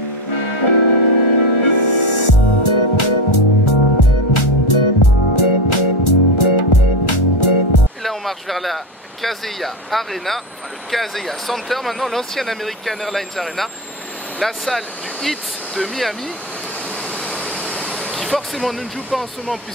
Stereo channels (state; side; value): normal; both; correlation 0.14